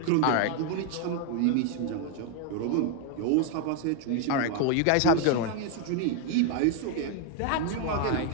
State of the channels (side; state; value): both; different; correlation 0.01